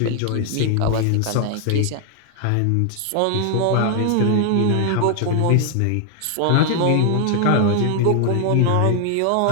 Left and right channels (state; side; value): different; both; correlation 0.00